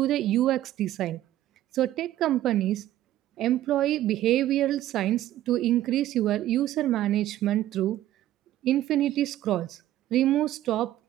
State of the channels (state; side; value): quieter; left; 13.6 dB